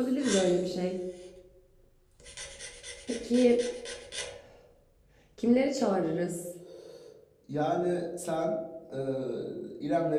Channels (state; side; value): identical; both; correlation 1.00